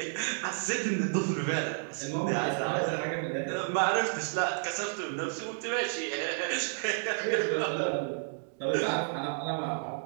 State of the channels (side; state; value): left; silent; digital silence